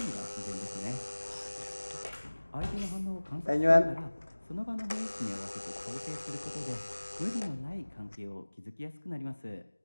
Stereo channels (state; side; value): inverted; both; correlation -1.00